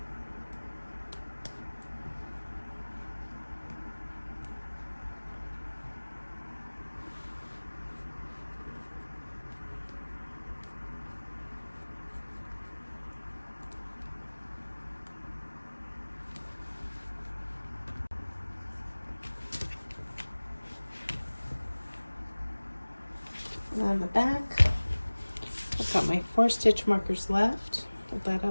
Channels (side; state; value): both; inverted; correlation -1.00